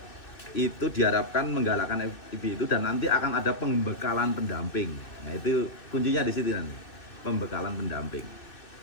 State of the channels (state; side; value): late; right; 2.6 ms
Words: itu diharapkan menggalakkan FIB itu, dan nanti akan ada pembekalan pendamping. Nah itu kuncinya di situ nanti, pembekalan pendamping.